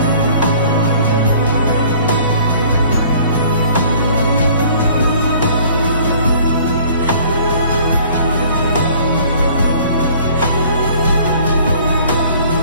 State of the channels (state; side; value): inverted; both; correlation -0.53